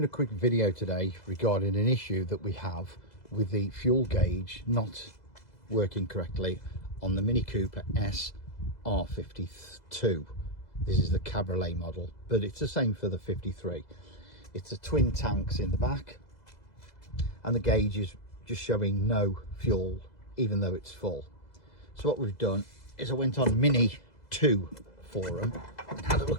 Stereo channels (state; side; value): late; right; 2.0 ms